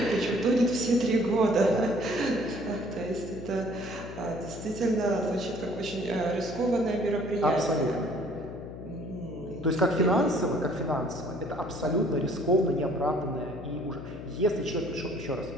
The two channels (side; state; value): left; noise; hum, 11 dB below the sound